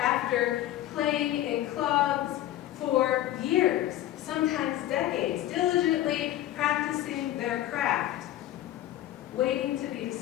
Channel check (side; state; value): right; quieter; 13.7 dB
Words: playing in clubs for years, sometimes decades, diligently practicing their craft, waiting to be